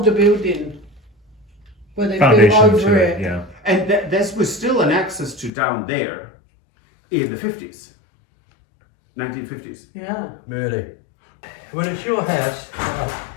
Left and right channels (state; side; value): drops out; right; at 5.5 s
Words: building where they built Foundation over to it. it, yeah. And this was still an access to down there in the 50s. 1950s. Yeah. Really. When it's your house,